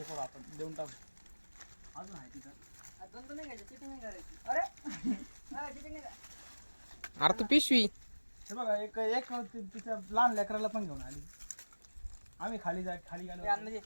करू, आपण देऊन टाकू. अजून आहे तिथं. अरे तू पिशवी हे बघा, एक एक तिच्या लहान लेकराला पण घेऊन आली. आम्ही खाली गेलो.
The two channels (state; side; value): inverted; both; correlation -1.00